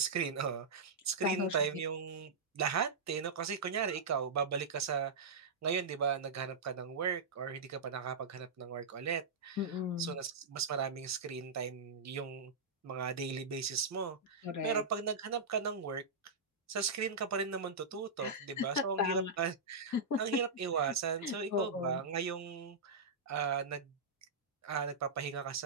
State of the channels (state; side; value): quieter; left; 3.8 dB